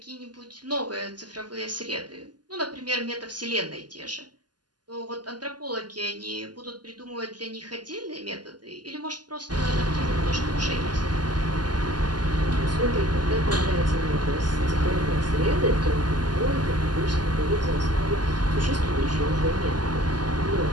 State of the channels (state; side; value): late; left; 0.70 ms